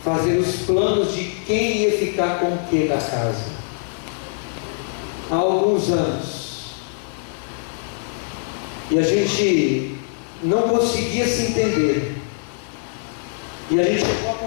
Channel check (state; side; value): silent; right; digital silence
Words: fazer os planos de quem ia ficar com o que da casa. Há alguns anos. E a gente não conseguia se entender. E a gente chegou à